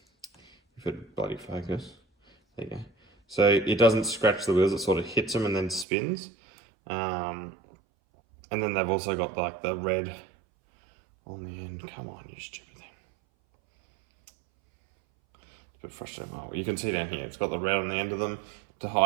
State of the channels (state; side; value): drops out; left; at 5.9 s